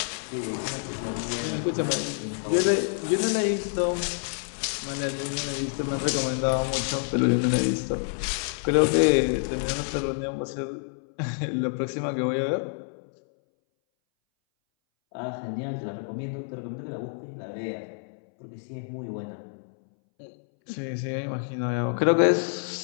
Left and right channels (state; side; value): silent; right; 60 dB below the other